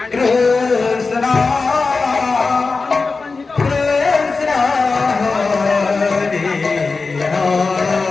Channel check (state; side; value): quieter; right; 4.1 dB